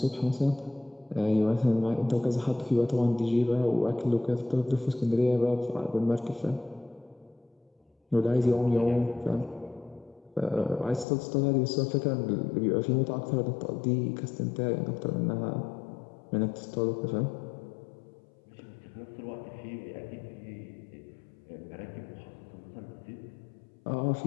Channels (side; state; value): right; drops out; at 11.1 s